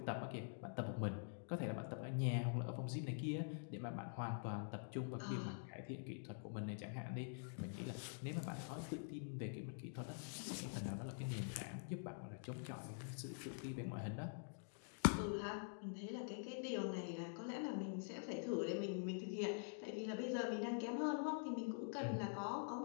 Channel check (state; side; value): silent; right; digital silence